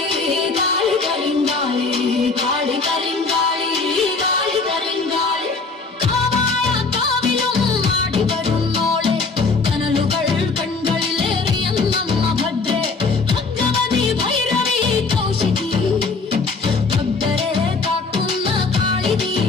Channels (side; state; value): right; quieter; 4.1 dB